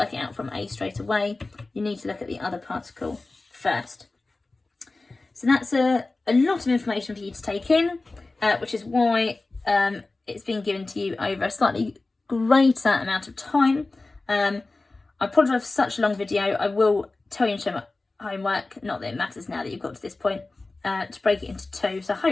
it out from A straight away. You need to look at the other particle first. So that's a lot of information for you to take in, which is why it's been given to you over a slightly greater amount of time. I apologise for such a long video. I will tell you in show my homework, not that it matters now that you've got to this point, to break it into 2. So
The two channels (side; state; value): right; quieter; 3.3 dB